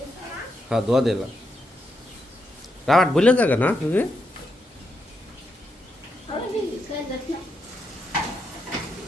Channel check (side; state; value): both; normal; correlation 0.82